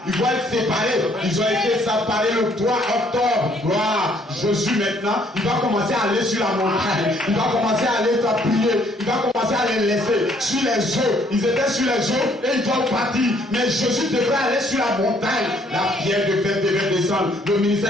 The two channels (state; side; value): normal; both; correlation 0.64